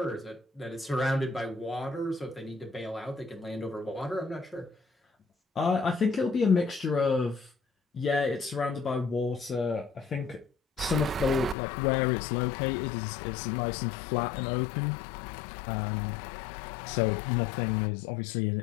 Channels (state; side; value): drops out; right; at 11.6 s